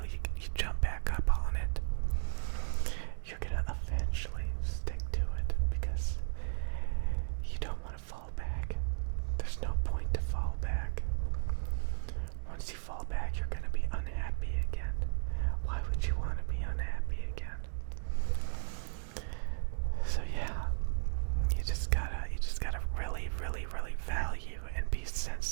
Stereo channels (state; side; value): silent; left; digital silence